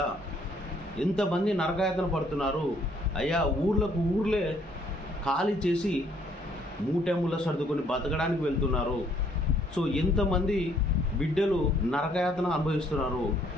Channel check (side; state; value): both; normal; correlation 0.65